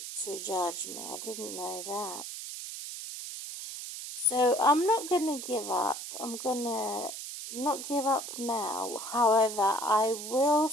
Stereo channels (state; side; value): noise; right; hiss, 8 dB below the sound